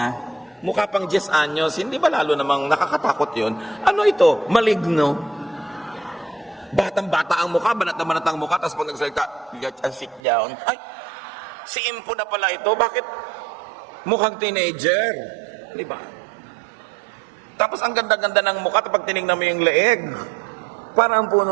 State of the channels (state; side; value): drops out; left; at 10.2 s